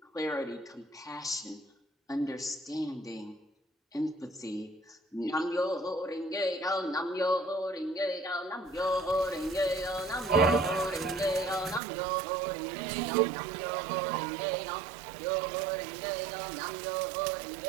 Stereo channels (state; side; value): drops out; left; at 11.8 s